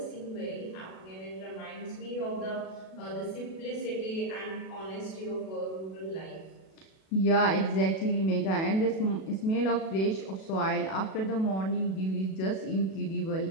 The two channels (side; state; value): right; late; 37 ms